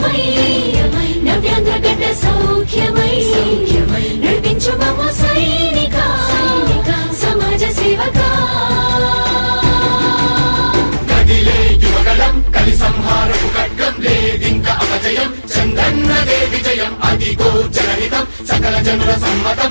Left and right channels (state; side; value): inverted; both; correlation -1.00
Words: నవ్యాంధ్ర గడ్డ సౌఖ్యమై నడిపించు మమ్మ సైనిక సమాజ సేవక. కదిలే యువగళం కలి సంహారపు ఖడ్గం లేదింక అపజయం. చంద్రన్నదే విజయం అదిగో జనహితం సకల జనుల సమ్మతం.